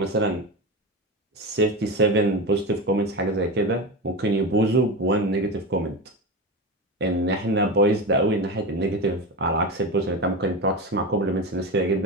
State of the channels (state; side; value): normal; both; correlation 0.22